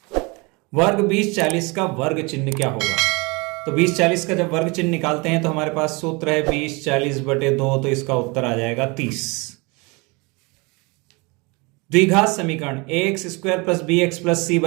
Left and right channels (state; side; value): quieter; left; 27.5 dB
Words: वर्ग 20-40 का वर्ग चिन्ह क्या होगा? तो 20-40 का जब वर्ग चिन्ह निकालते हैं तो हमारे पास सूत्र है 20/40/2, तो इसका उत्तर आ जाएगा 30। द्विघात समीकरण ax² + bx + c